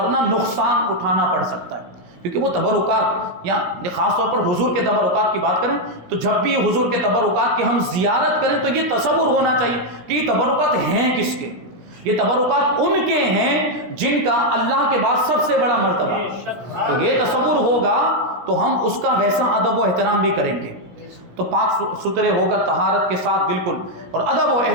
نقصان اٹھانا پڑ سکتا ہے۔ کیونکہ وہ تبرکات، یا خاص طور پر حضور کے تبرکات کی بات کریں تو جب بھی حضور کے تبرکات کی ہم زیارت کریں تو یہ تصور ہونا چاہیے کہ یہ تبرکات ہیں کس کے؟ یہ تبرکات ان کے ہیں جن کا اللہ کے بعد سب سے بڑا مرتبہ ہے۔ تو یہ تصور ہوگا تو ہم اس کا ویسا ادب و احترام بھی کریں گے۔ تو پاک ستھرے ہو کر طہارت کے ساتھ بالکل اور ادب و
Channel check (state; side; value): late; left; 16 ms